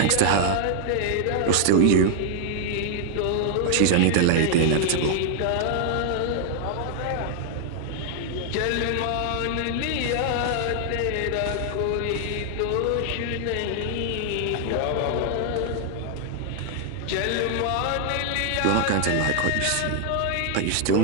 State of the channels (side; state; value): both; different; correlation 0.00